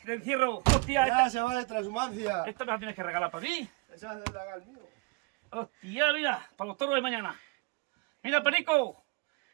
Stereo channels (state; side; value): quieter; left; 27.4 dB